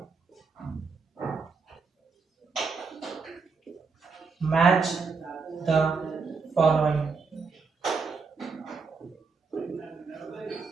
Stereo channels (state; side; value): quieter; left; 4.8 dB